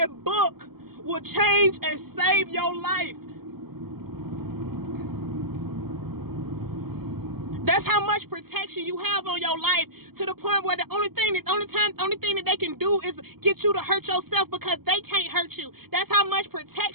book will change and save your life. That's how much protection you have on your life, to the point where the only thing that they can do is get you to hurt yourself, because they can't hurt you. That's how much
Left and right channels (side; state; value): left; late; 0.95 ms